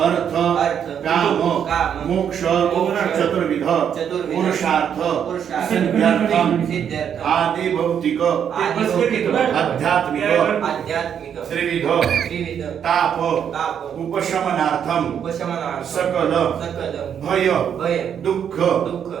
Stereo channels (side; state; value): left; quieter; 8.4 dB